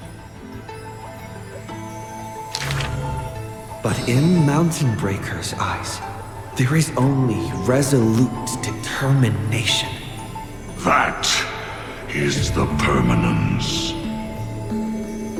But in Mountain Breaker's eyes, there is only resolute determination. That is the permanence.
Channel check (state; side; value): identical; both; correlation 1.00